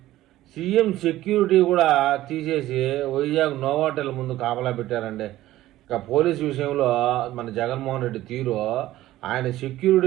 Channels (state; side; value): quieter; left; 15.2 dB